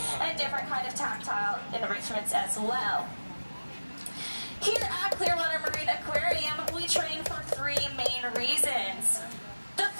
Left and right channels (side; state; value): both; inverted; correlation -1.00